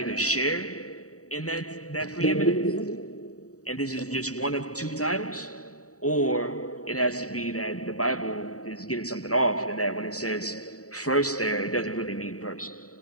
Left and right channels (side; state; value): right; late; 0.66 ms